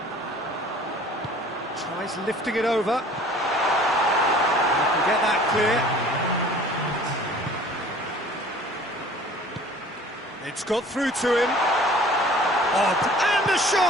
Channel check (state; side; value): normal; both; correlation 0.49